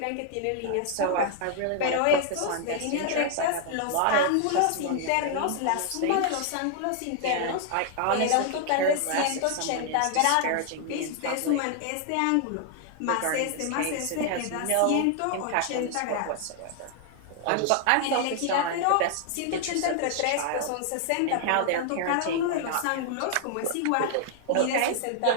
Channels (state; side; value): different; both; correlation 0.00